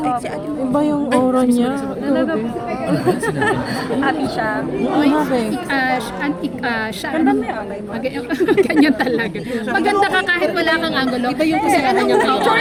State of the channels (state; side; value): identical; both; correlation 1.00